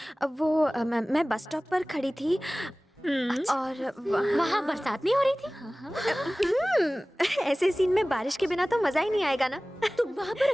मैं बस स्टॉप पर खड़ी थी और वहाँ बरसात नहीं हो रही थी? ऐसे सीन में बारिश के बिना तो मजा ही नहीं आएगा ना। तुम वहाँ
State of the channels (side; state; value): both; normal; correlation 0.98